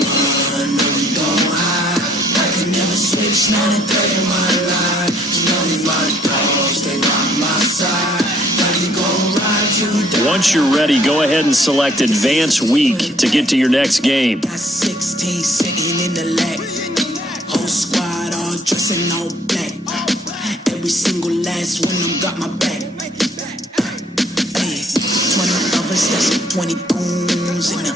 once you're ready, go ahead and select Advance Week to get to your next game. 16 sitting in the leg. Whole squad all dressing all black. Every single last one of them got my back. Hey, 20 of us, that's 20.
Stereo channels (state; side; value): normal; both; correlation 0.63